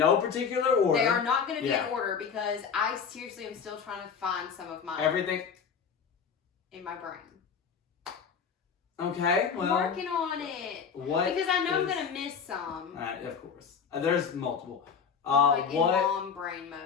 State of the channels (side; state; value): right; quieter; 6.5 dB